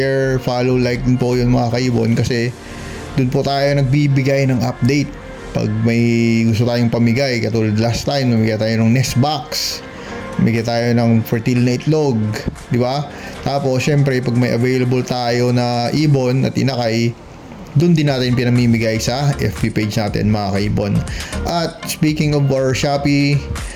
follow, like din po yun mga kaibon kasi dun po tayo nagbibigay ng update. Pag may gusto tayong pamigay, katulad last time, namigay tayo ng nest box, namigay tayo ng fertile na itlog, di ba? Tapos, syempre, pag may available tayo na ibon at inakay, dun din natin pinamimigay sa FB page natin, mga kaibon. At speaking of our Shopee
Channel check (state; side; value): identical; both; correlation 1.00